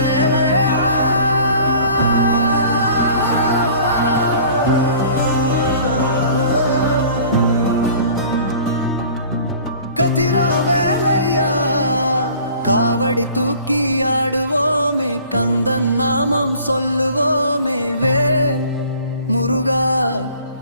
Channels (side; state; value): both; inverted; correlation -0.48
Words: கதிரா வேலையா காவடி தூக்கி ஆடுவோமே கந்தன் நாமம் சொல்லுவோமே வேல் முருகா